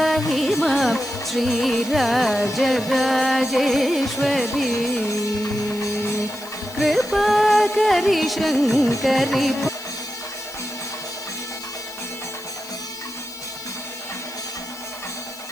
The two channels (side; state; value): left; noise; hiss, 19 dB below the sound